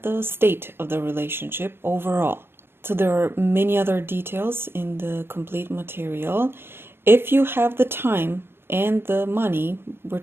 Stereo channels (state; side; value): late; left; 0.11 ms